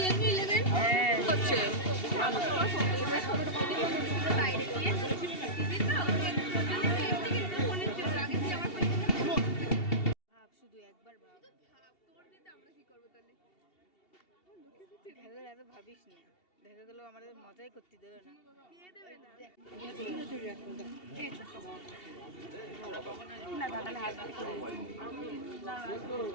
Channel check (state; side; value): late; right; 2.7 ms